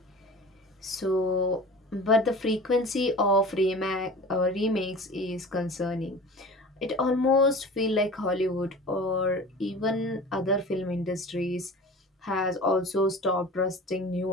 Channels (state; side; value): normal; both; correlation 0.38